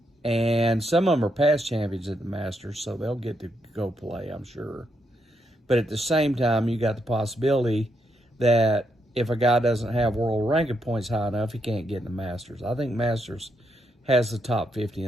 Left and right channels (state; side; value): normal; both; correlation 0.79